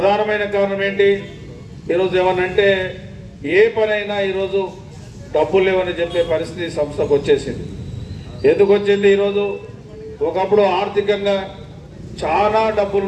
కారణం ఏంటి, ఈరోజు ఏమనంటే ఏ పనైనా ఈరోజు డబ్బులు లేవని చెప్పే పరిస్థితి సంస్థకు వచ్చేసింది. ఎందుకు వచ్చింది? ఈరోజు ఒకప్పుడు ఆర్థికంగా చాలా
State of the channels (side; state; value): both; identical; correlation 1.00